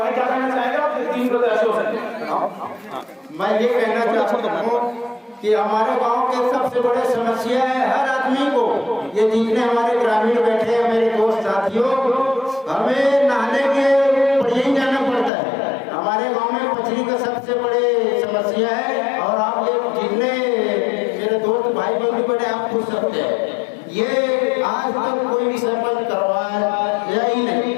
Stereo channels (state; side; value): drops out; right; at 15.3 s